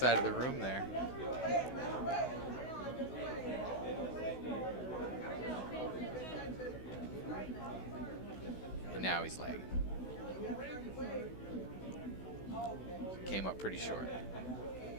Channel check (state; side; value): late; right; 16 ms